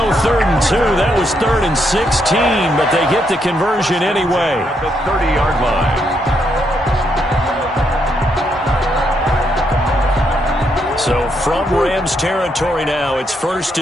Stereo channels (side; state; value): both; normal; correlation 0.77